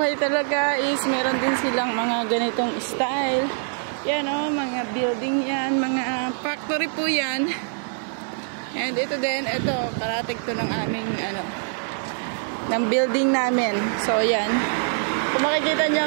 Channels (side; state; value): left; silent; 63 dB below the other